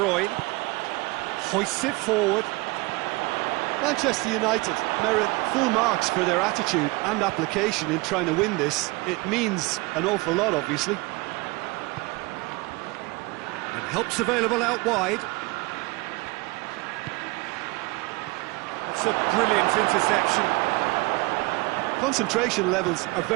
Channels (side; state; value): left; quieter; 23.9 dB